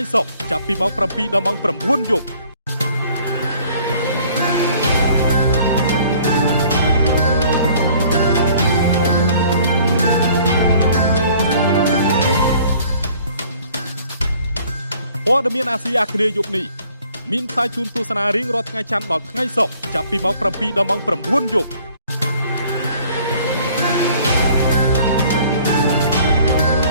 សុក្រចាប់ពីម៉ោង 7 ដល់ម៉ោង 9 យប់ព័ត៌មានអាស៊ីអាគ្នេយ៍យប់នេះមានផ្សាយជូនទស្សនារៀងរាល់ថ្ងៃច័ន្ទដល់ថ្ងៃសុក្រចាប់ពីម៉ោង 7 ដល់ម៉ោង 9 យប់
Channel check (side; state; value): both; inverted; correlation -0.56